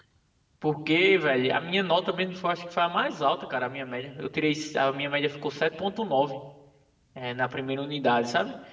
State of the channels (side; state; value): both; identical; correlation 1.00